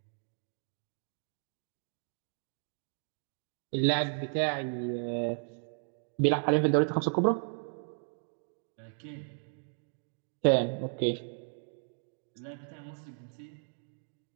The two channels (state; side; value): silent; left; digital silence